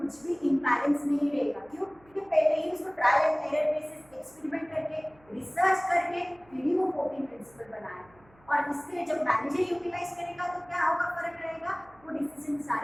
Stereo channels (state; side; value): noise; right; hum, 29 dB below the sound